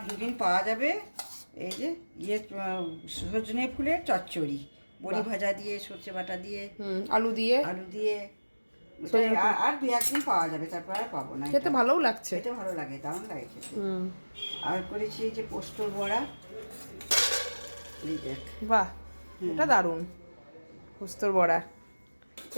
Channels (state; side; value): inverted; both; correlation -1.00